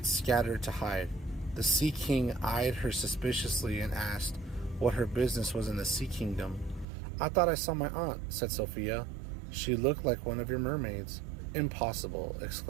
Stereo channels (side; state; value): left; drops out; at 6.9 s